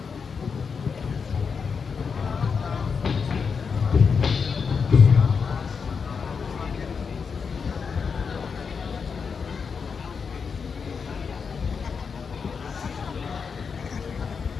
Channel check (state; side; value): quieter; right; 5.8 dB